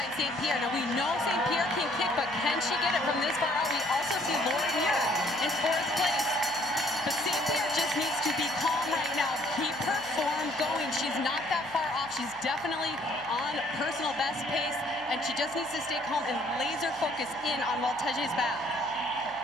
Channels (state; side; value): noise; right; hum, 22 dB below the sound